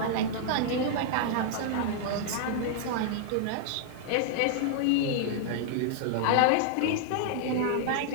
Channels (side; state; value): both; different; correlation -0.01